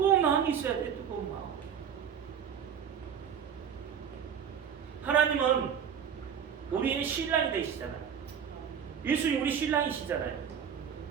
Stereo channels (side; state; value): left; quieter; 7.9 dB